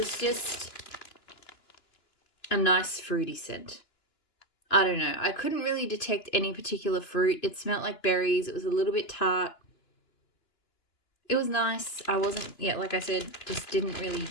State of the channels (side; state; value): right; late; 2.9 ms